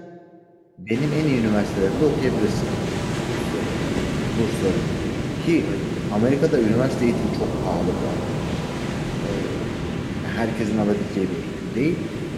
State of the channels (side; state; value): both; identical; correlation 1.00